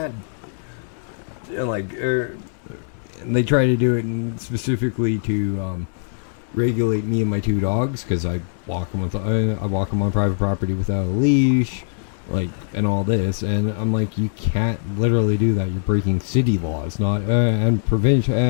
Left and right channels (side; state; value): right; silent; digital silence